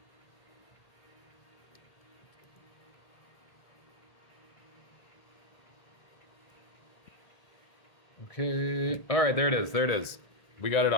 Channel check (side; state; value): right; late; 1.7 ms